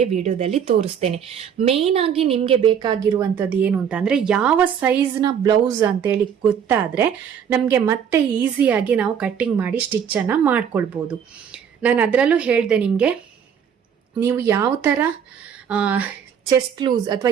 ವಿಡಿಯೋದಲ್ಲಿ ತೋರಿಸ್ತೇನೆ. ಮೇಯ್ನ್ ಆಗಿ ನಿಮಗೆ ಬೇಕಾಗಿರುವಂಥದ್ದು ಏನು ಅಂತ ಅಂದರೆ ಯಾವ ಸೈಜ್ನ ಬ್ಲೌಸ್ ಅಂತೇಳಿ ಗೊತ್ತಾದರೆ ನಮಗೆ ಮತ್ತೆ ಈಸಿಯಾಗಿ ನಾವು ಕಟ್ಟಿಂಗ್ ಮಾಡಿ ಸ್ಟಿಚ್ಚನ್ನು ಮಾಡ್ಕೊಳ್ಬೋದು. ನಾನು ಅದರಲ್ಲೂ ಹೇಳಿದೆ ನಿಮಗೆ, ನೀವು ಯಾವ ಥರ ಚೆಸ್ಟ್ ಲೂಸ್ ಅಥವಾ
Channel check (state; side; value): quieter; left; 8.0 dB